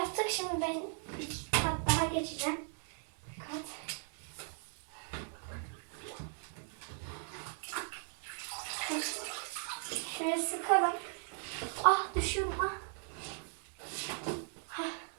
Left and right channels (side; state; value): left; silent; 53 dB below the other